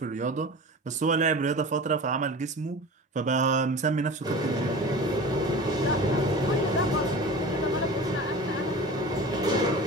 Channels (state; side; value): normal; both; correlation 0.35